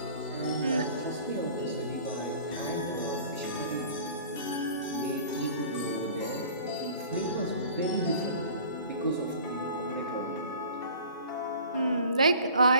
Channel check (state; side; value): inverted; both; correlation -0.45